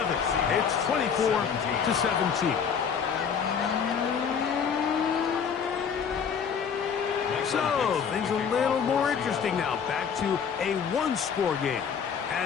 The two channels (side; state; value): right; quieter; 6.9 dB